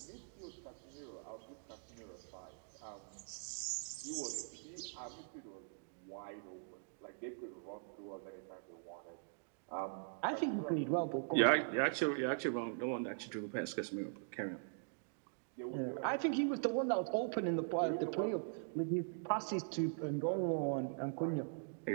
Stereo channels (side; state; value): left; silent; digital silence